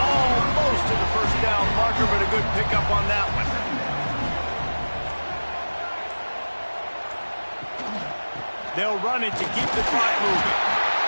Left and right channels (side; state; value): both; inverted; correlation -1.00